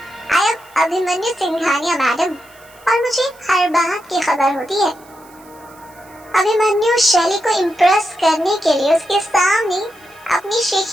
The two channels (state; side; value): noise; right; hiss, 27 dB below the sound